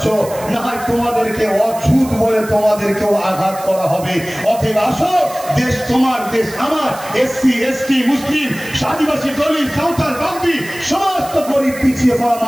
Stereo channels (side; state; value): right; noise; hiss, 16 dB below the sound